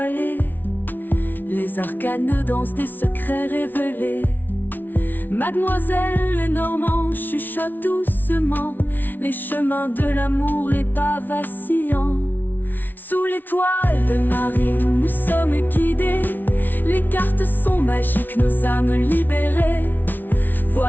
Les arcanes dansent des secrets révélés. Mademoiselle Lenormand chuchote doucement les chemins de l'amour, les pas vacillants. Sous l'étoile de Marie, nous sommes guidés. Les cartes sont magiques, nos âmes libérées.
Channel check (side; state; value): right; late; 0.088 ms